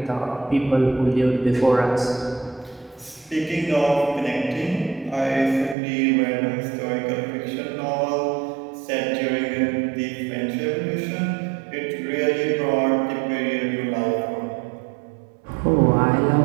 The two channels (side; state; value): left; drops out; at 5.8 s